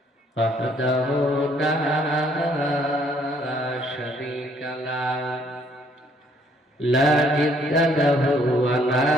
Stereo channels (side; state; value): both; normal; correlation 0.65